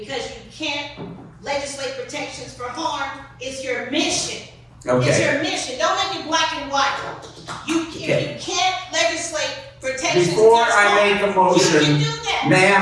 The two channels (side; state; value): both; identical; correlation 1.00